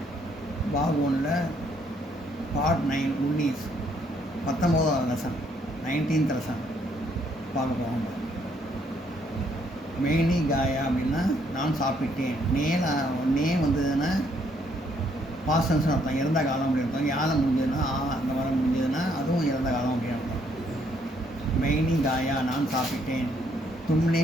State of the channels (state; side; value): normal; both; correlation 0.69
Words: பாக் ஒன்றில் பார்ட் 9 19 19வது லெசன் 19th லெசன் பார்க்க போவாங்க. மேனி காயா அப்படின்னா நான் சாப்பிட்டேன். நே வந்ததுன்னா பாஸ்டன்ஸ்னு அர்த்தம், இறந்த காலம் அப்படின்னு அர்த்தம். யாரை முடிஞ்சதுன்னா அந்த வாரம் முடிஞ்சதுன்னா அதுவும் இறந்த காலம் அப்படின்னு அர்த்தம். மேனி காயா நான் சாப்பிட்டேன். தும்னே